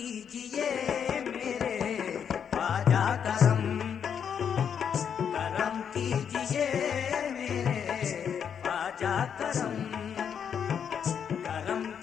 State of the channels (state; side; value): quieter; right; 7.8 dB